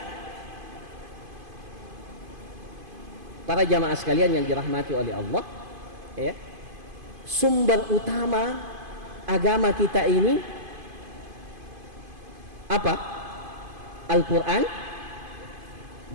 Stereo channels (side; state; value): left; late; 2.5 ms